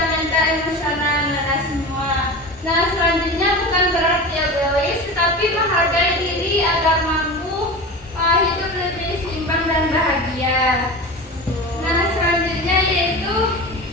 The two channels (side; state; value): both; normal; correlation 0.30